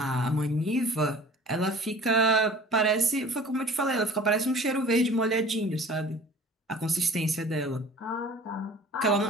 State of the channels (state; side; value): normal; both; correlation 0.46